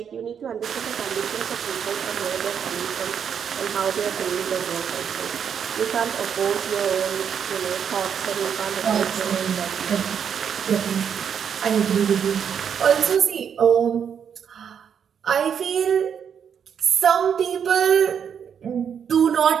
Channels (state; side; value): quieter; left; 7.7 dB